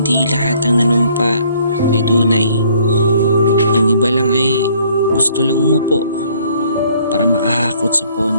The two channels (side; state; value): both; inverted; correlation -0.61